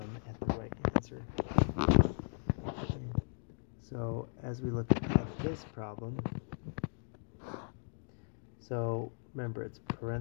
at the right answer. Okay. So as we look at this problem, so remember, it's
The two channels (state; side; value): silent; right; digital silence